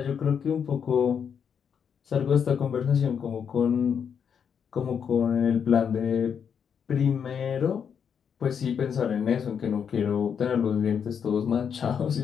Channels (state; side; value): quieter; right; 7.3 dB